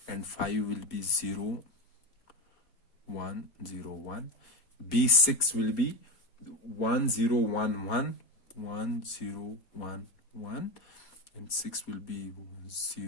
and 5 will be 0101. B6 will be 1011 and 6 will be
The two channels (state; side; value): late; right; 4.3 ms